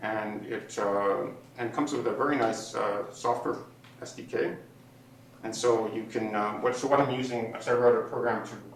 and it comes with a very nice software SDK. And so you can, what I'm using, so I wrote a program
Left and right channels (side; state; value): both; identical; correlation 1.00